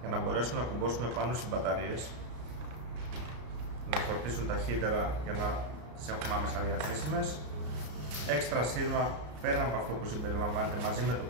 για να μπορέσουμε να κουμπώσουμε πάνω στις μπαταρίες, να φορτίσουν ταχύτερα για να τις έχουμε άμεσα διαθέσιμες. Έξτρα σύρμα πέρα από αυτό που συμπεριλαμβάνεται μαζί με το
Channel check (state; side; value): late; left; 33 ms